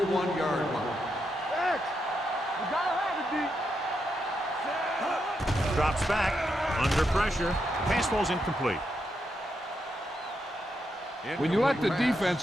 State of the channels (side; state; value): both; normal; correlation 0.83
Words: line. X, you gotta have it, D. Drops back, under pressure. Pass falls incomplete. When you let the